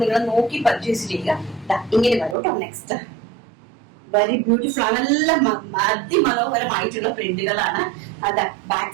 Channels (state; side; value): drops out; left; at 2.4 s